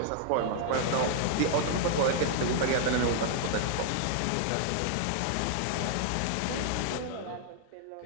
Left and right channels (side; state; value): both; different; correlation -0.01